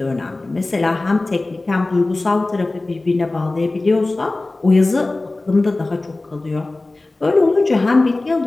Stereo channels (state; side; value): quieter; right; 3.0 dB